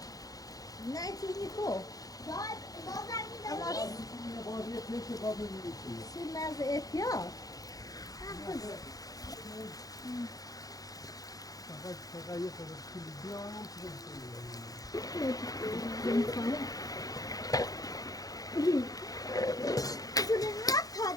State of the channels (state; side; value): late; right; 0.17 ms